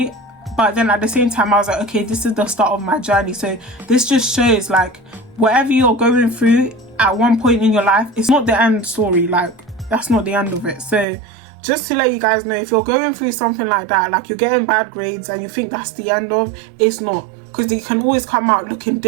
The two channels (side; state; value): left; drops out; at 11.1 s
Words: but then at the same time I was like, okay, this is the start of my journey. So this just shows, like, whatever you're going through at one point in your life, it's not the end story. Like, that's not the end of it. So just to let you guys know, if you're going through something like that, like you're getting bad grades and you think that's the end of, it's not, because you can always come out looking